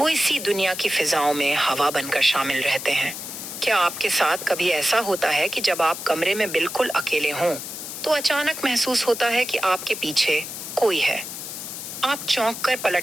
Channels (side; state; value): left; noise; hiss, 8 dB below the sound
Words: इसी दुनिया की फिजाओं में हवा बनकर शामिल रहते हैं? क्या आपके साथ कभी ऐसा होता है कि जब आप कमरे में बिल्कुल अकेले हों तो अचानक महसूस होता है कि आपके पीछे कोई है? आप चौंक कर